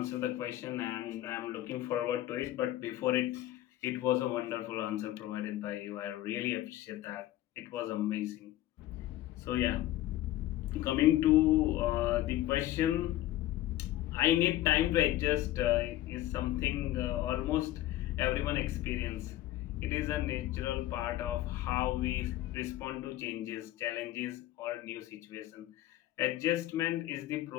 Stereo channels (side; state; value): right; quieter; 14.7 dB